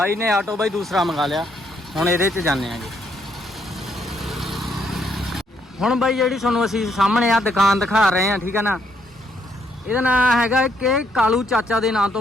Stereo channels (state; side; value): normal; both; correlation 0.72